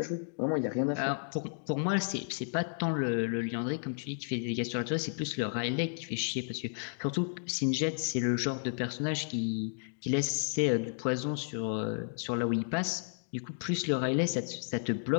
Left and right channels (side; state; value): right; silent; digital silence